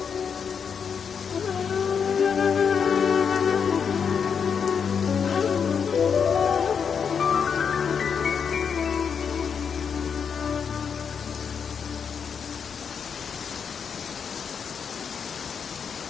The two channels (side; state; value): right; quieter; 6.7 dB